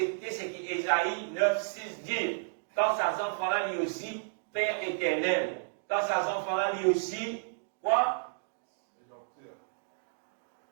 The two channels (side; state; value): left; silent; digital silence